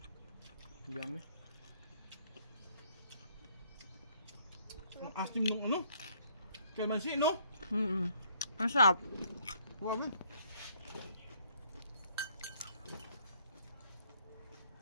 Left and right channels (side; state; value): both; inverted; correlation -0.64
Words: Yummy. Ang asim nung ano? Kalamansi, no? Ang sarap. Grabe.